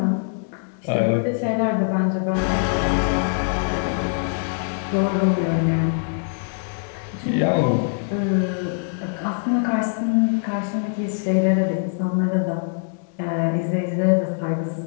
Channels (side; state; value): right; silent; 64 dB below the other